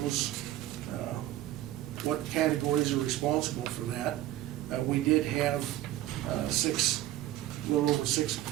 those, what categories are responsible for that. We did have a little over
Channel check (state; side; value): quieter; left; 14.5 dB